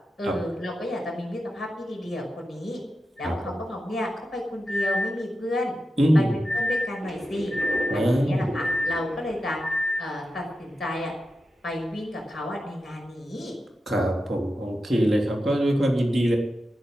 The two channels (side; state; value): both; normal; correlation 0.90